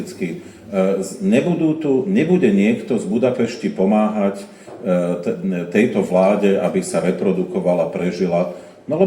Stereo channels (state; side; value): identical; both; correlation 1.00